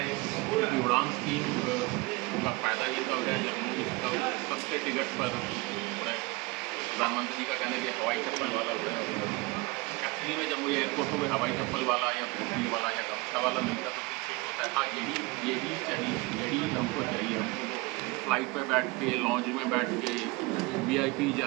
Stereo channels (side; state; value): left; quieter; 24.4 dB